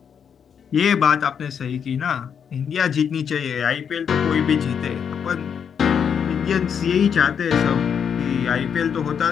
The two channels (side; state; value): right; quieter; 7.5 dB